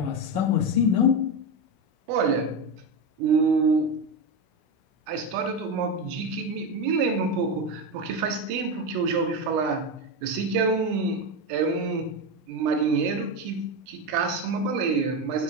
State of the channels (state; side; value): late; left; 17 ms